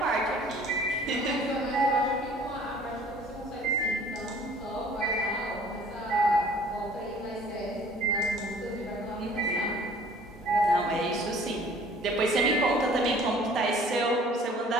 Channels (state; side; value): normal; both; correlation 0.53